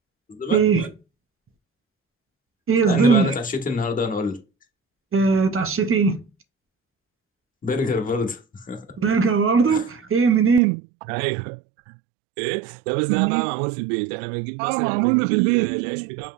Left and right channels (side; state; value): left; drops out; at 10.6 s